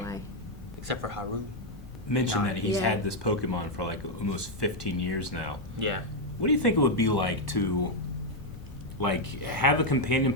why. Except for Haru. Mentioned that he's had this Pokemon for like almost 15 years now. Yeah. What do you think it would be like to like have a companion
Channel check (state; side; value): normal; both; correlation 0.01